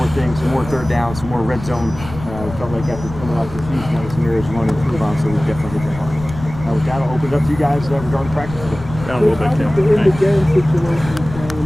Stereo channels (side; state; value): left; noise; rumble, 12 dB below the sound